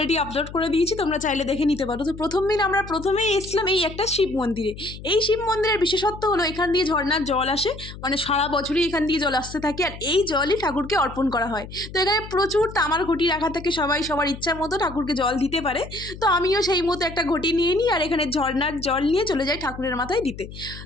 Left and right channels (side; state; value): left; noise; hum, 13 dB below the sound